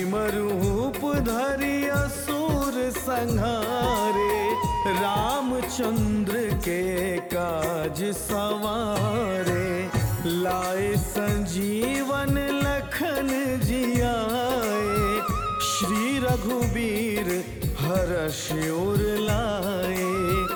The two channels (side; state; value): both; identical; correlation 1.00